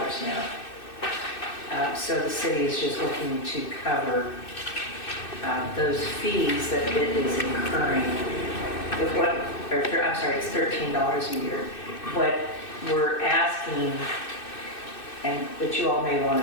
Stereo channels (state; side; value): late; right; 2.6 ms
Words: now. So the city is just looking to cover those fees that it is incurring. It's $13 a year. What we're asking, and that you all may